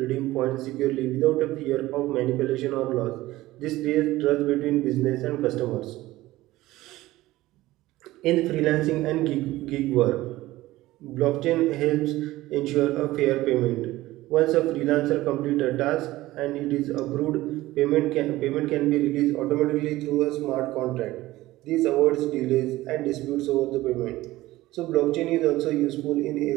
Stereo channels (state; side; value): quieter; left; 17.3 dB